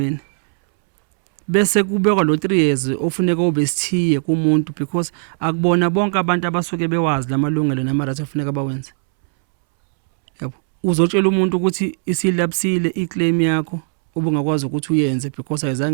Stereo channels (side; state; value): left; silent; 67 dB below the other